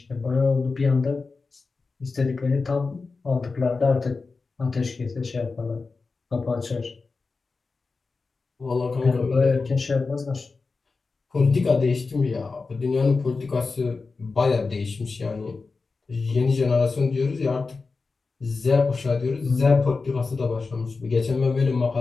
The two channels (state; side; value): quieter; right; 4.2 dB